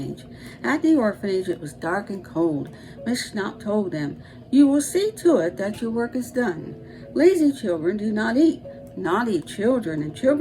At the orphanage it was dark and cold. Miss Schnaap told them, "You will see to it that your work is done. Lazy children do not eat. Naughty children and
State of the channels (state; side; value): identical; both; correlation 1.00